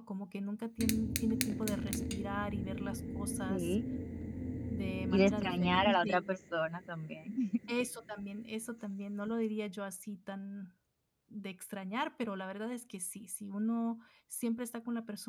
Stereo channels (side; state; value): both; identical; correlation 1.00